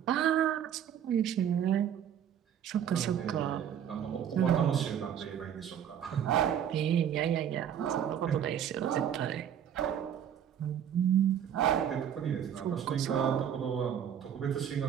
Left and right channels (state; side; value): quieter; left; 9.2 dB